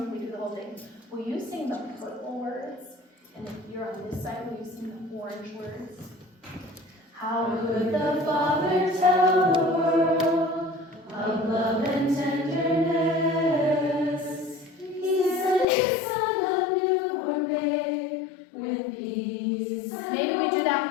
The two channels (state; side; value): drops out; right; at 15.7 s